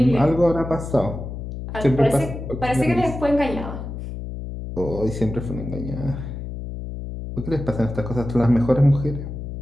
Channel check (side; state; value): left; noise; hum, 8 dB below the sound